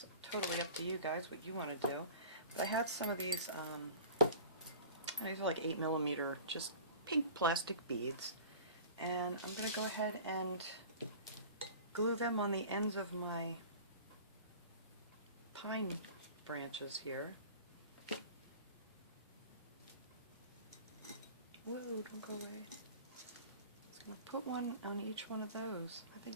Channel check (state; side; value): inverted; both; correlation -0.41